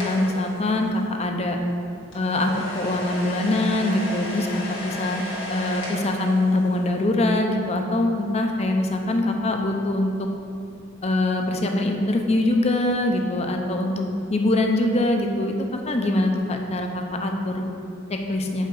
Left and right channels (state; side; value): normal; both; correlation 0.65